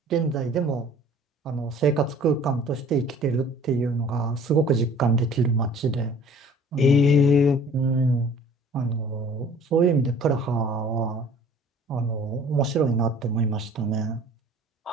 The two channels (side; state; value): both; normal; correlation 0.50